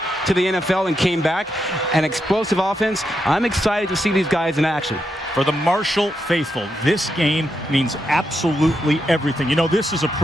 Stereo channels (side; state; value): both; normal; correlation 0.83